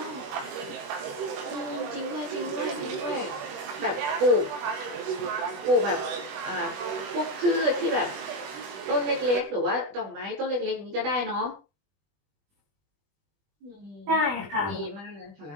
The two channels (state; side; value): late; left; 21 ms